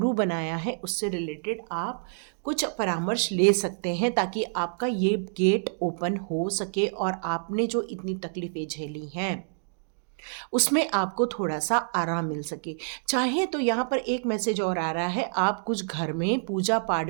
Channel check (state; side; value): silent; left; digital silence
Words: बनाया है उससे रिलेटेड आप कुछ परामर्श ले सकते हैं, ताकि आपका ये गेट ओपन हो सके और आपने जो इतनी तकलीफ़ें झेली हैं उसमें आपको थोड़ा सा आराम मिल सके। चाहे तो यहाँ पर एक मैसेज और आ रहा है, आप कुछ घर में पूजा पाठ